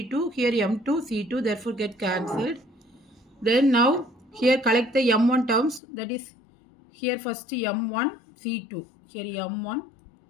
here m2 c2, therefore get cancelled. Then now here collect the m1 terms, that is here first m1 c2, here m1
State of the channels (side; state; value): right; drops out; at 5.8 s